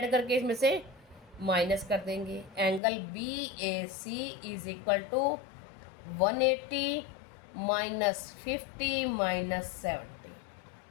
करके इसमें से माइनस कर देंगे। Angle B A C is equal to 180 minus 50 minus 70।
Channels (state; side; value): drops out; right; at 2.8 s